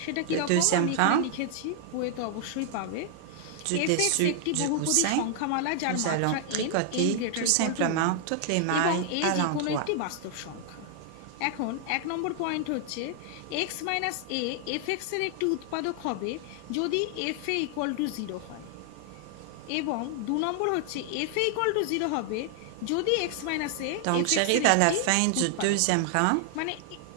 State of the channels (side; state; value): both; different; correlation 0.00